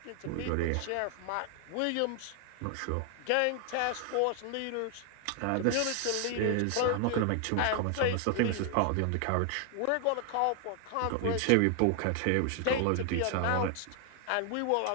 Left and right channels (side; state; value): both; different; correlation 0.00